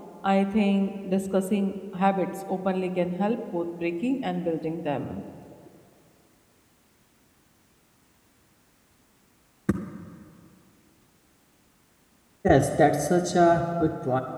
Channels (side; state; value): both; identical; correlation 1.00